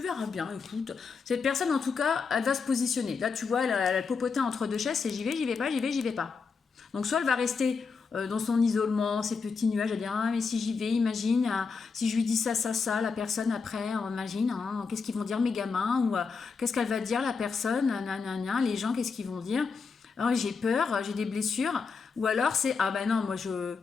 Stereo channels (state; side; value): quieter; right; 5.1 dB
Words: bien, écoute. Cette personne, en tout cas, elle va se positionner. Là, tu vois, elle a popoté entre deux chaises, c'est j'y vais pas, j'y vais pas. Donc, soit elle va rester dans son isolement, ses petits nuages, elle va dire, ah, mais si j'y vais, imagine, si je lui dis ça, la personne après, imagine, hein, qu'est-ce qu'ils vont dire mes gamins, ou qu'est-ce qu'elle va dire la personne, les gens, qu'est-ce qu'ils vont dire. Oh, j'ai peur, j'ai des blessures. Ou alors c'est, ah ben non, moi je